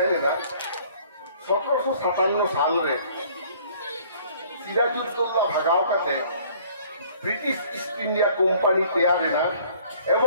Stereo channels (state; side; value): inverted; both; correlation -0.55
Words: ना 1757 साल रे सिराजुद्दौला भगाव काते ब्रिटिश ईस्ट इंडिया कोम्पानी तैयार है ना